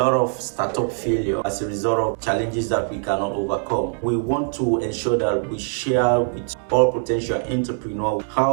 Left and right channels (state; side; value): silent; left; 58 dB below the other